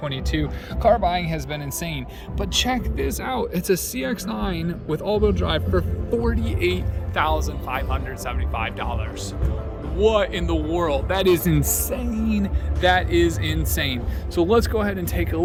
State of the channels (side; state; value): both; identical; correlation 1.00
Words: Car buying has been insane. But check this out. It's a CX9 with all-wheel drive for $48,575. What in the world? That is insane. That is insane. So let's go ahead and take a